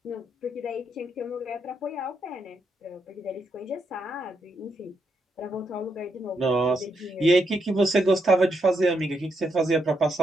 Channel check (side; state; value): both; normal; correlation 0.80